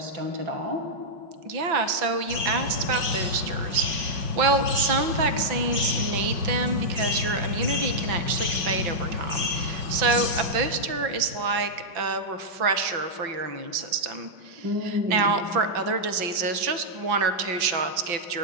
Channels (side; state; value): left; late; 5.9 ms